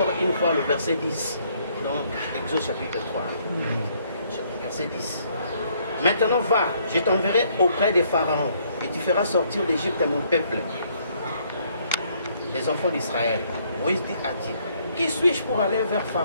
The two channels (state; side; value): inverted; both; correlation -0.67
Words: une fois le verset 10, donc Exode chapitre 3, verset 10. Maintenant va, je t'enverrai auprès des pharaons, et tu feras sortir d'Égypte mon peuple, les enfants d'Israël. Moïse dit à Dieu, qui suis-je pour aller vers